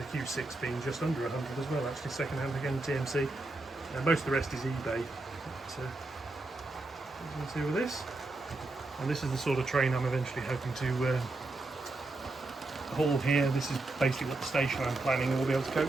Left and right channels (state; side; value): quieter; left; 3.0 dB